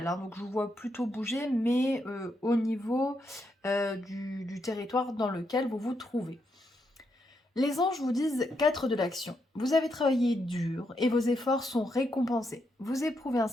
hein. Donc, je vous vois plutôt bouger, mais au niveau du territoire dans lequel vous vous trouvez. Les anges vous disent 4 de l'action. Vous avez travaillé dur et vos efforts sont récompensés. Vous éprouvez un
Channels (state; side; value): normal; both; correlation 0.80